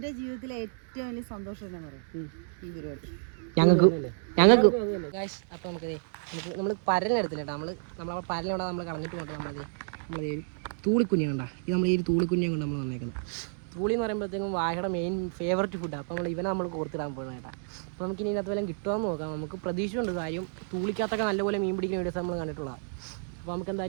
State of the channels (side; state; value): left; silent; digital silence